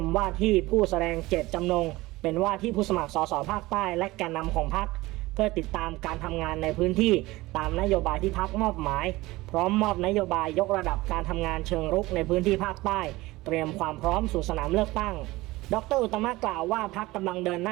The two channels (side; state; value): left; quieter; 19.7 dB